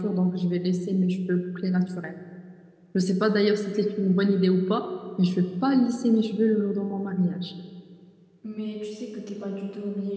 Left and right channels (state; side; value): identical; both; correlation 1.00